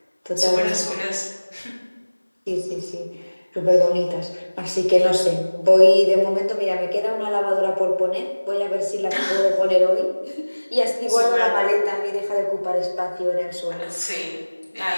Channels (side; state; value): both; inverted; correlation -1.00